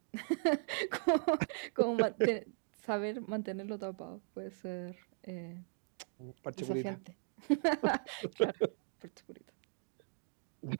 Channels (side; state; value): left; silent; 52 dB below the other